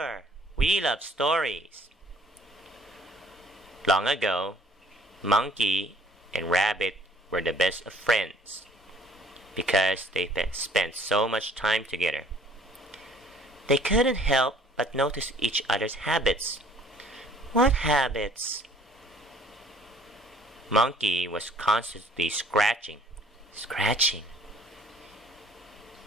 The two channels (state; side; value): normal; both; correlation 0.58